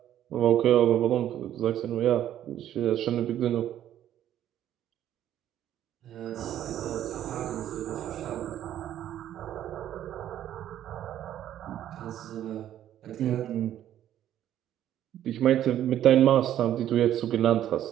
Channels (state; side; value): quieter; left; 11.5 dB